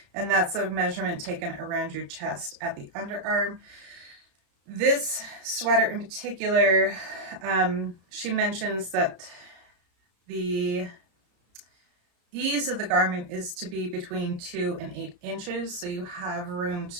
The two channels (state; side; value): late; left; 33 ms